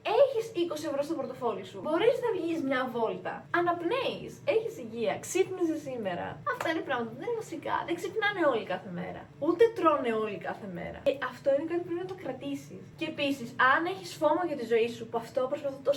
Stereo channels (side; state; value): both; identical; correlation 1.00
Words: έχεις 20 ευρώ στο πορτοφόλι σου, μπορείς να βγεις μια βόλτα, αναπνέεις, έχεις υγεία, ξύπνησες σήμερα. Αυτά είναι πράγματα που δεν είναι βασικά. Δεν ξυπνάνε όλοι κάθε μέρα. Ούτε τρώνε όλοι κάθε μέρα. Και αυτό είναι κάτι που πρέπει να το κρατήσεις. Και επίσης, αν έχεις φόμο για τη ζωή σου, που αυτό προσπαθώ